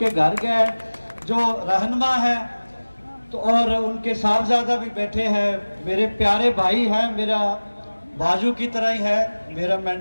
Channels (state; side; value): inverted; both; correlation -1.00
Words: घर गए जो रहनुमा है, तो और उनके साहबजादा भी बैठे हैं, मेरे प्यारे भाई हैं, मेरा बाजू की तरह ही है, मेरा